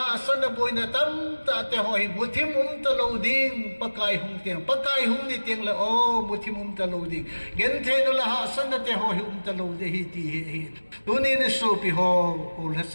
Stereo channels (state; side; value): inverted; both; correlation -1.00